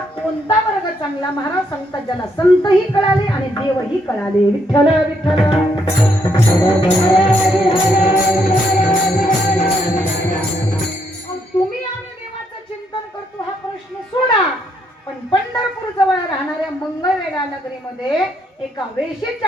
कोणता वर्ग चांगला? महाराज सांगतात ज्याला संतही कळाले आणि देवही कळाले. विठ्ठल विठ्ठल. तुम्ही आम्ही देवाचं चिंतन करतो हा प्रश्न सोडा, पण पंढरपूर जवळ राहणाऱ्या मंगळवेढा नगरीमध्ये एका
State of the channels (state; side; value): normal; both; correlation 0.74